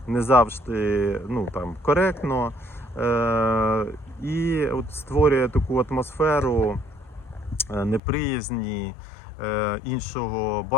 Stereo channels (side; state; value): right; drops out; at 8.0 s